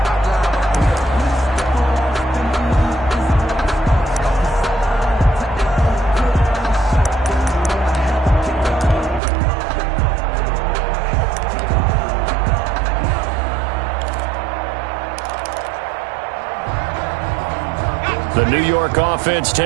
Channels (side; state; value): left; drops out; at 9.2 s